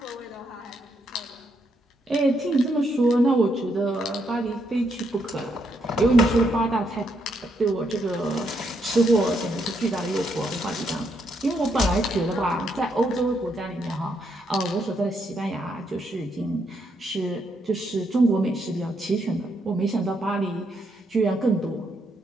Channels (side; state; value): both; normal; correlation 0.77